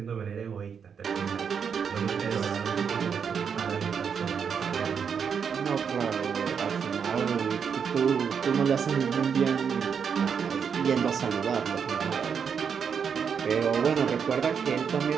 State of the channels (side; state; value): left; quieter; 6.8 dB